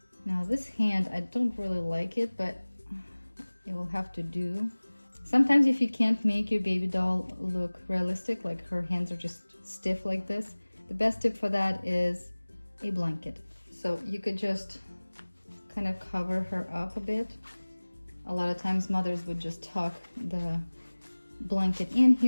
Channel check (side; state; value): both; inverted; correlation -1.00